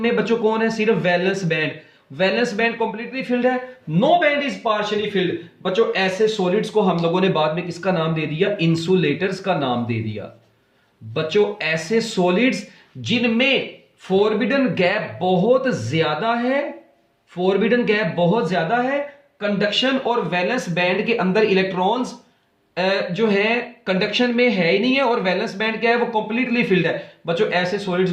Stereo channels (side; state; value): both; identical; correlation 1.00